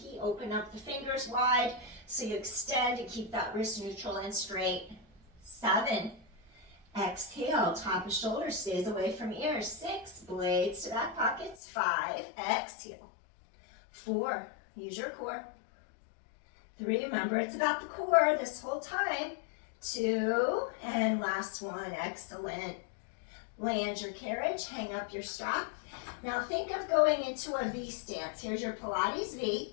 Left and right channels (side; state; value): right; drops out; at 11.6 s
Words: Open up the fingers wide so you extend and keep that wrist neutral and straight. 7. Exhale, top of shoulder stays away from ears. 6. Blades to back pockets. 5. Exhale. 4. Use your core. 3, remember it's about the core this whole time. 2, and last one, excellent. Land your carriage, hang up your strap. Now think of going into a V stance. Here's your Pilates V,